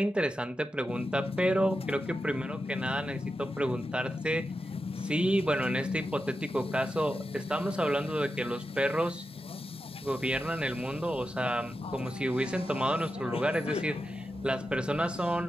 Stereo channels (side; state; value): both; normal; correlation 0.89